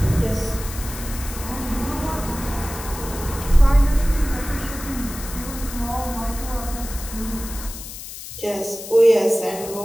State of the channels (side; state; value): left; noise; hiss, 11 dB below the sound